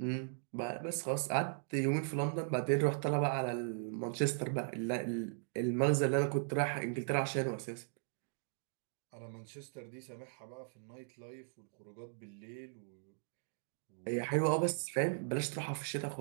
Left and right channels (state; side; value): silent; left; digital silence